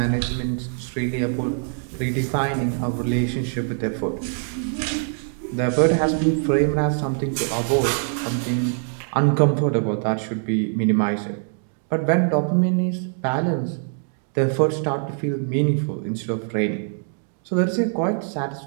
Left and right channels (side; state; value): left; silent; 60 dB below the other